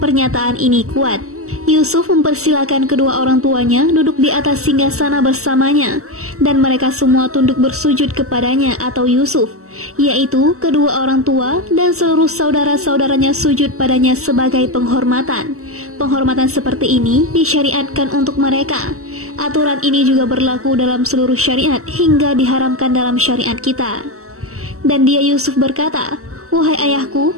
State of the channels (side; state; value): left; late; 0.64 ms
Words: Pernyataan ini kuat. Yusuf mempersilakan kedua orang tuanya duduk di atas singgasana bersamanya, dan mereka semua tunduk bersujud kepadanya atau Yusuf, yaitu kedua orang tua dan seluruh saudara-saudaranya sujud padanya sebagai penghormatan. Penghormatan seperti ini disyariatkan untuk mereka. Aturan ini juga berlaku dalam seluruh syariat hingga diharamkan dalam syariat kita. Dan dia Yusuf berkata, "Wahai ayahku,